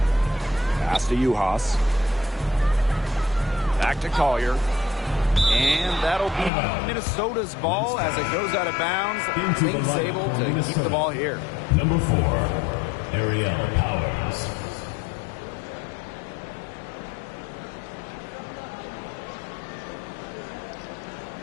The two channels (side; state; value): right; drops out; at 6.5 s